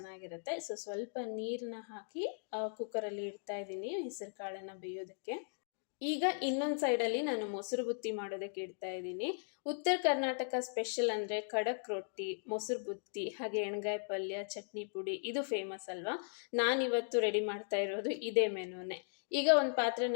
ಸೊ ಸ್ವಲ್ಪ ನೀರನ್ನ ಹಾಕಿ ಕುಕ್ಕರಲ್ಲಿ ಇಡ್ತಾ ಇದ್ದೀನಿ ಹೆಸರು ಕಾಳನ್ನ ಬೇಯೋದಕ್ಕೆ. ಈಗ ಇನ್ನೊಂದು ಸೈಡಲ್ಲಿ ನಾನು ಮೊಸರು ಬುತ್ತಿ ಮಾಡೋದಕ್ಕೆ ಇಡ್ತಾ ಇದ್ದೀನಿ. ಉತ್ತರ ಕರ್ನಾಟಕ ಸ್ಪೆಷಲ್ ಅಂದರೆ ಖಡಕ್ ರೊಟ್ಟಿ, ಮೊಸರು ಬುತ್ತಿ, ಹಾಗೆ ಎಣ್ಗಾಯಿ ಪಲ್ಯ, ಚಟ್ನಿ ಪುಡಿ ಇದು ಫೇಮಸ್ ಅಲ್ವಾ. ನಾನಿವತ್ತು ರೆಡಿ ಮಾಡ್ತಾ ಇರೋದು ಇದೇ ಮೆನುನೇ. ಈಗ ಒಂದು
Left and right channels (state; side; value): silent; right; digital silence